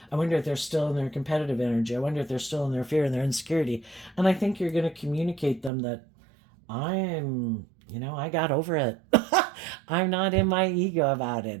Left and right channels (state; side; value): drops out; left; at 5.7 s